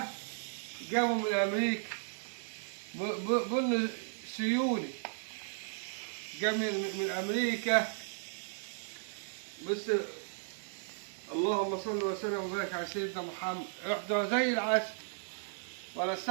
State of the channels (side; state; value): left; silent; digital silence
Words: جابه من امريكا، بن سيوني جاب من امريكا. بس اللهم صل وسلم وبارك على سيدنا محمد، يحضر زي العسل ولا